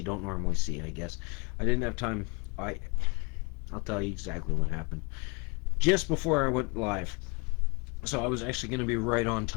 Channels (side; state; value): right; quieter; 31.3 dB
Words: don't normally see, I guess. I didn't have time. I'll tell you exactly what happened. Just before I went live. So I was actually going to be right on